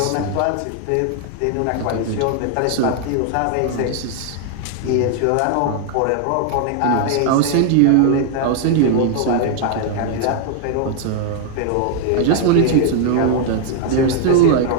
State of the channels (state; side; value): different; both; correlation 0.00